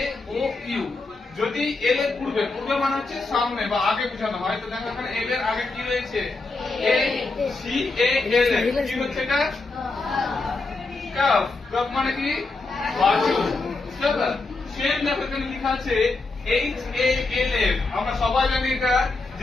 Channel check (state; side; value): quieter; right; 3.5 dB